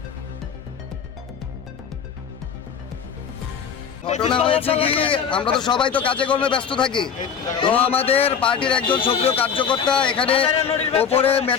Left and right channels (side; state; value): right; quieter; 7.1 dB